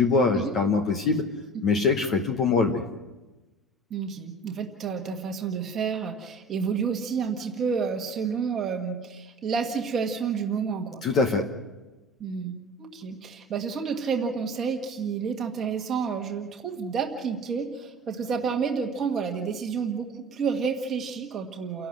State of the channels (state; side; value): normal; both; correlation 0.40